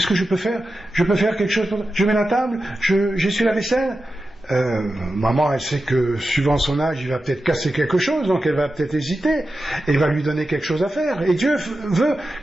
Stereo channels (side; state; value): both; normal; correlation 0.92